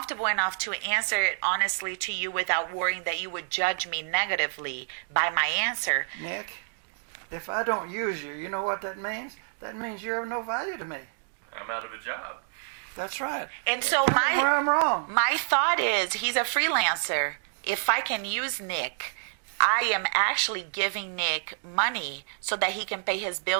enough to answer it honestly to you without worrying that you would judge me negatively by my answer. Nick, if I don't use you, you know what that means? That means you're of no value to me. I'm out of a job. That's right. And so Tell me where I'm wrong. My thought is he's a freelancer. If I can use Nick, I am actually giving Nick money so that he can pay his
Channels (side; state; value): left; silent; digital silence